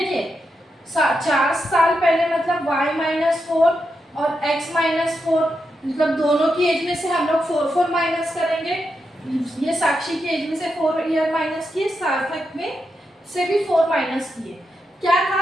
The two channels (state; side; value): normal; both; correlation 0.86